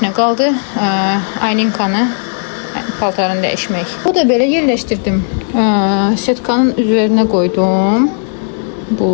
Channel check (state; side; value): silent; right; digital silence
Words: nə qaldı. Aylinkanı paltarını dəyişmək. Bu da belə yerləşdirdim. Setkanın üzerine koydum.